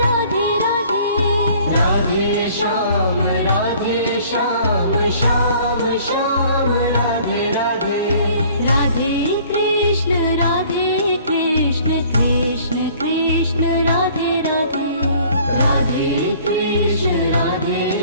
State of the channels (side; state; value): both; inverted; correlation -0.54